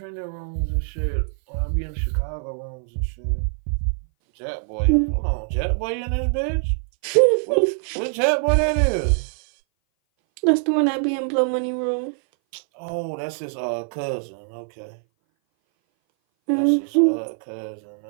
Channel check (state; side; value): silent; left; 59 dB below the other